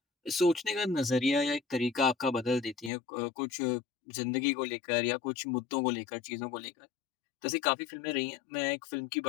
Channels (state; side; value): drops out; right; at 2.9 s